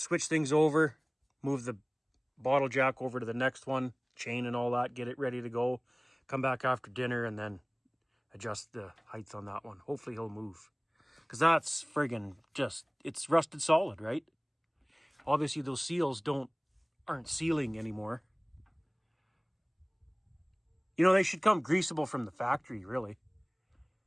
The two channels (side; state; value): both; identical; correlation 1.00